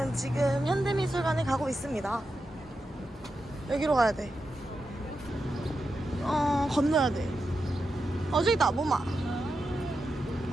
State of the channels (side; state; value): both; normal; correlation 0.88